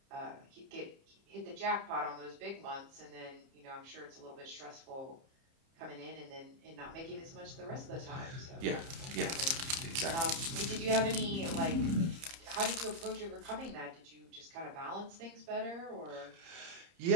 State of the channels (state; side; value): late; left; 30 ms